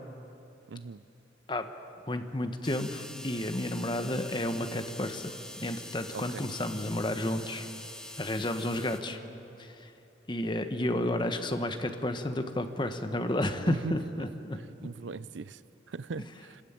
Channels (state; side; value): normal; both; correlation 0.65